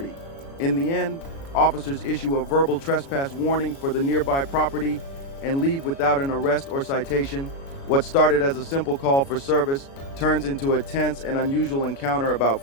In the end, officers issue a verbal trespass warning for the nearby property and leave without an arrest or citation. What started as a simple call for service turns into a tense and unusual encounter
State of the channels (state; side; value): late; right; 36 ms